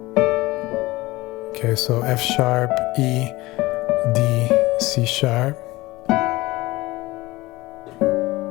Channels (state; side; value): quieter; right; 19.9 dB